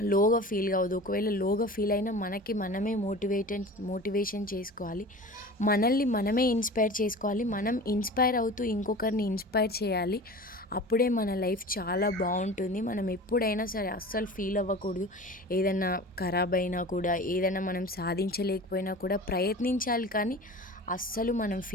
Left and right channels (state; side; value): normal; both; correlation 0.37